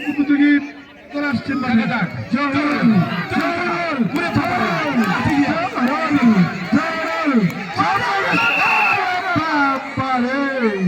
প্রতিযোগী চলে আসছেন, দেখা যাক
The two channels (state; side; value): identical; both; correlation 1.00